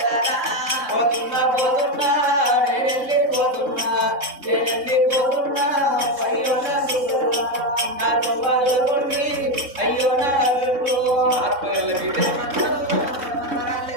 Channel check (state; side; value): late; left; 3.6 ms